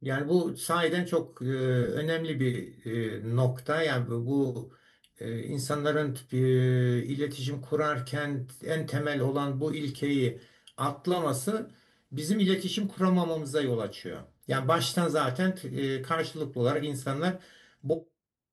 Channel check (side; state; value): both; identical; correlation 1.00